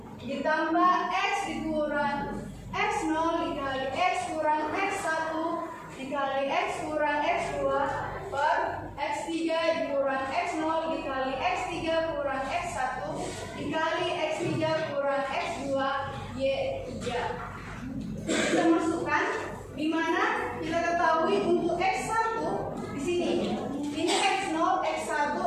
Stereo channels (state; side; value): identical; both; correlation 1.00